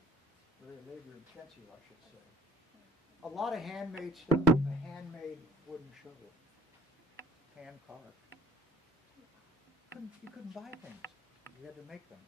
Very labor intensive, I should say. A lot of handmade stuff. A handmade wooden shovel. Hand carved. You couldn't buy things. You had to make them.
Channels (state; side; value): normal; both; correlation 0.56